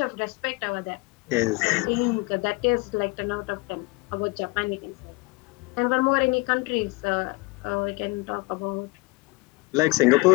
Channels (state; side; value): quieter; right; 25.7 dB